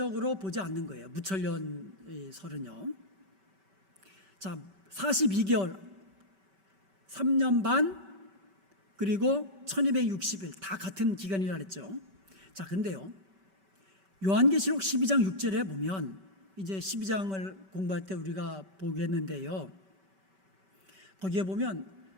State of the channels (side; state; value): left; late; 5.2 ms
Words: 보지 않는 거예요. 무천년 설은요. 자, 42개월, 3년 반, 그리고 1260일 다 같은 기간이라 그랬죠. 자, 근데요. 요한계시록 12장 6절에 보면 이제 12장을 공부할 때 우리가 보겠는데요. 거기에 보면